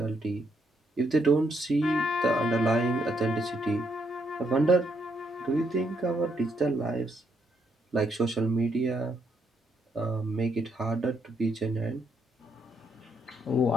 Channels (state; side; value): normal; both; correlation 0.75